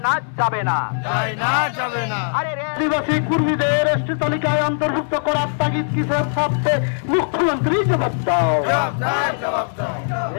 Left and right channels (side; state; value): right; silent; 63 dB below the other